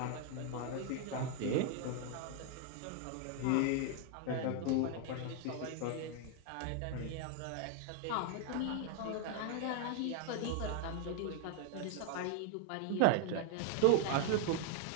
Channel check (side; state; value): both; different; correlation 0.00